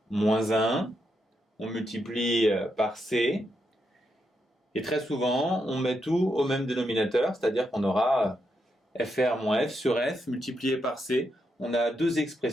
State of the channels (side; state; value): both; normal; correlation 0.82